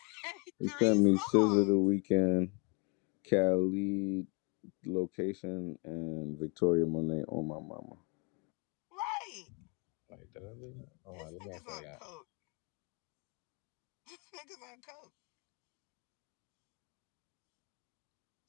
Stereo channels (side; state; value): right; quieter; 33.1 dB